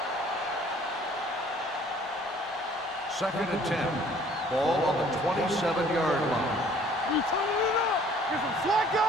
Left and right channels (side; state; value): both; normal; correlation 0.56